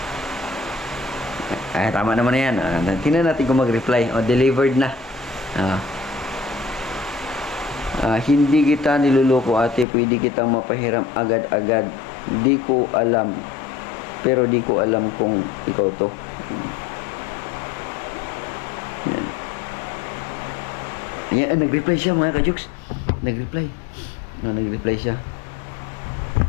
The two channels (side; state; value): right; drops out; at 9.9 s